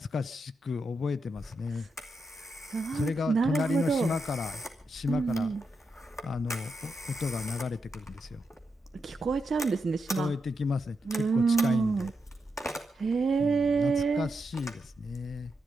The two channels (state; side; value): normal; both; correlation 0.85